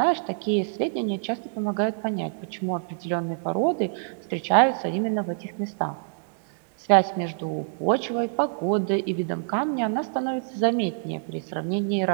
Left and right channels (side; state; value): left; silent; digital silence